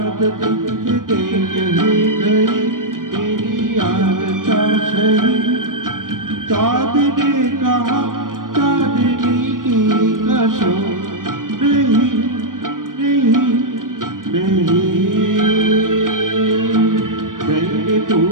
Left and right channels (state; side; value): late; left; 0.90 ms